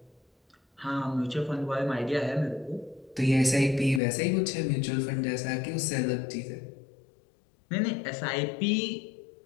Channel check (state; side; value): drops out; right; at 4.0 s